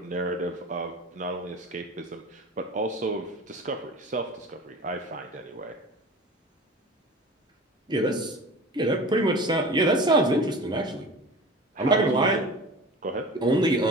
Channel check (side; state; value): both; normal; correlation 0.37